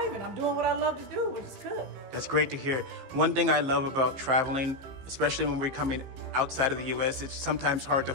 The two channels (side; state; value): left; late; 15 ms